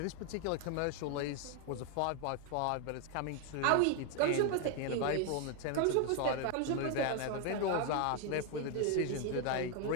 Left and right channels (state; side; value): different; both; correlation 0.01